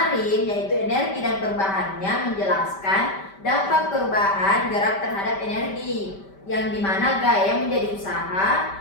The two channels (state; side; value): late; right; 5.1 ms